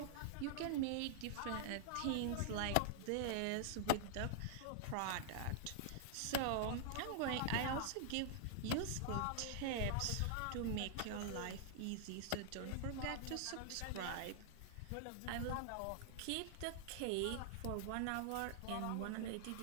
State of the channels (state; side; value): different; both; correlation -0.01